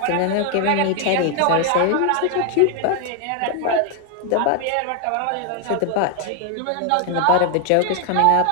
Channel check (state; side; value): different; both; correlation 0.00